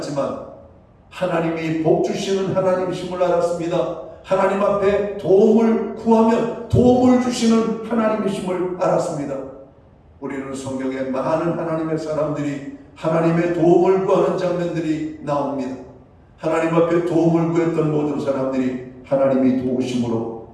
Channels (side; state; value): both; identical; correlation 1.00